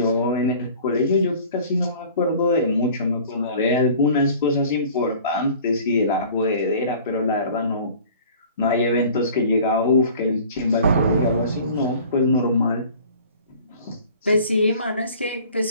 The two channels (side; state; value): both; inverted; correlation -0.47